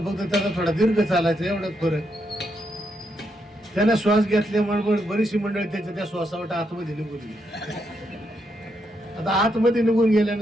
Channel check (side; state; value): both; normal; correlation 0.80